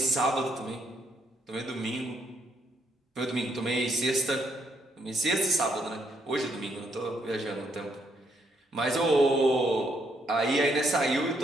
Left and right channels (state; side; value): normal; both; correlation 0.73